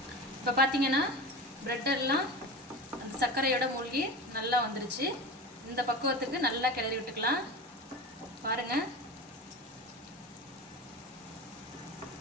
இப்போ பார்த்தீங்கன்னா ப்ரெட் எல்லாம் அந்த சர்க்கரையோட மூழ்கி நல்லா வந்துருச்சு. இந்த பக்குவத்துக்கு நல்லா கிளறி விட்டுக்கலாம். பாருங்கள்.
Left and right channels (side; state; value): both; normal; correlation 0.29